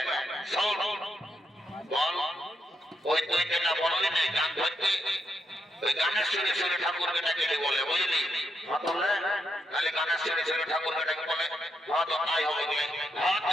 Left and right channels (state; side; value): normal; both; correlation 0.82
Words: শোন বল ওই তুই যেটা বললি না গান ধরতে ওই গানের সুরে সুরে ঠাকুর বেটাকে বলে বুঝলি তাহলে গানের সুরে সুরে ঠাকুর বেটাকে বলে হ্যাঁ তো তাই হবে হ্যাঁ